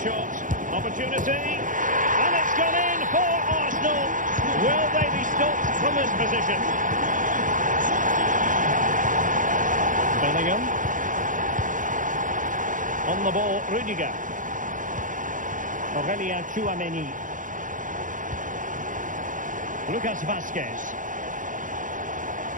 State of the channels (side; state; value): left; late; 0.38 ms